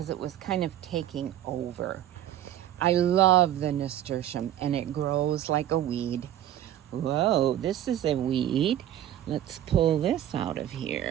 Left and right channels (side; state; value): left; quieter; 12.0 dB